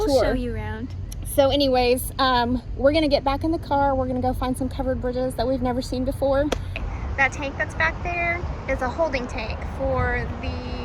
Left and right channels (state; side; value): identical; both; correlation 1.00